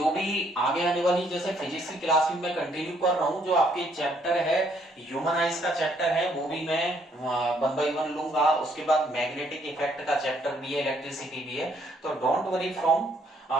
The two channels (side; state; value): both; normal; correlation 0.68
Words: भी आगे आने वाली जैसे फिजिक्स की क्लास में मैं कंटिन्यू कर रहा हूँ, जो आपके चैप्टर है ह्यूमन आइज का चैप्टर है वो भी मैं 1 by 1 लूंगा। उसके बाद मैग्नेटिक इफेक्ट का चैप्टर भी है, इलेक्ट्रिसिटी भी है। तो don't worry from